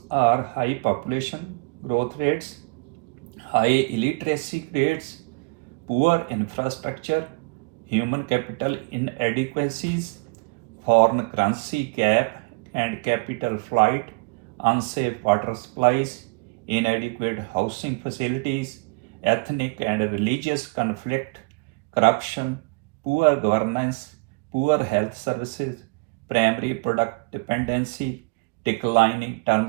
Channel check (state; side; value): quieter; left; 30.3 dB